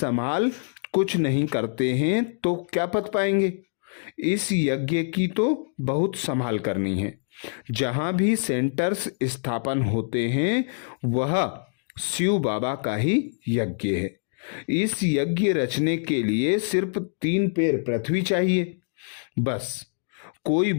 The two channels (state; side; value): silent; right; digital silence